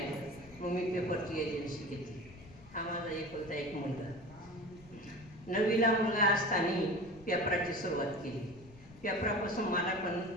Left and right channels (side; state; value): left; noise; rumble, 21 dB below the sound